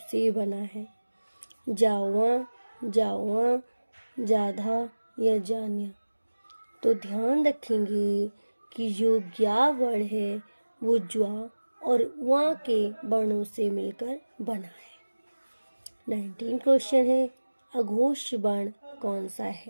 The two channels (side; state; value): both; inverted; correlation -1.00